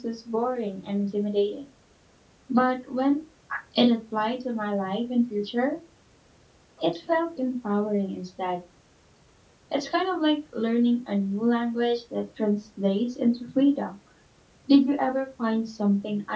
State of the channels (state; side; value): identical; both; correlation 1.00